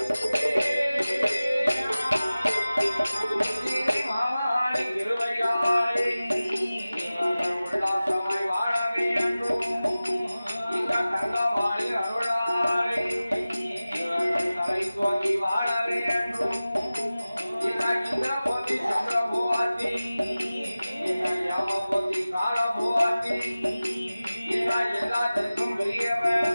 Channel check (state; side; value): inverted; both; correlation -0.97